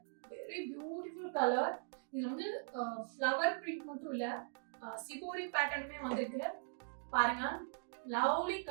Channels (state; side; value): silent; left; digital silence